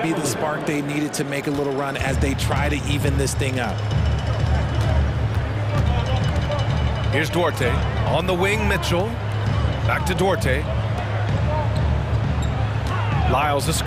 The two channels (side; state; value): both; identical; correlation 1.00